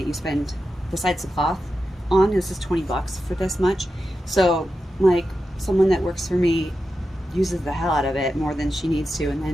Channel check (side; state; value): both; normal; correlation 0.90